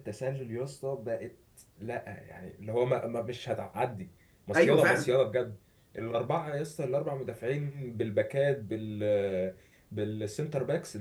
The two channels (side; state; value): both; identical; correlation 1.00